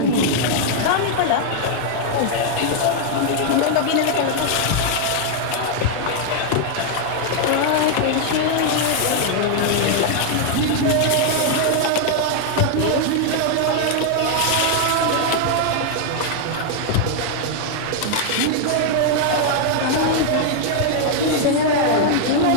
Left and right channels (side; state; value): both; different; correlation 0.00